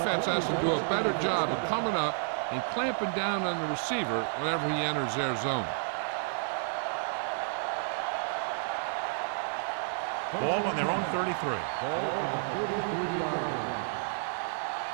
has to do a better job of coming up and clamping down on the receiver whenever he enters their zone. Ball on their own 33. Ball on the 33-yard line.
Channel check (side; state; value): left; silent; 57 dB below the other